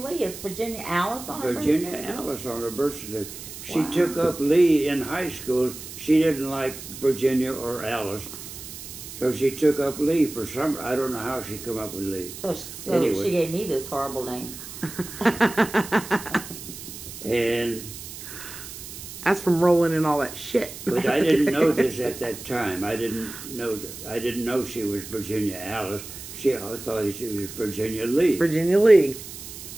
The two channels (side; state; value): right; noise; hiss, 12 dB below the sound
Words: Lee. It's Virginia Alice on her birth certificate? Virginia Alice on her birth certificate. She took up Lee in high school. She didn't like Virginia or Alice. So she took up Lee for some... I don't know how she come up with Lee. So anyway. She gave me this horrible name. And... That's from rolling in all that shit. But I didn't know this at that time. I didn't know she was Virginia Alice. I thought she was Virginia Lee. Virginia Lee.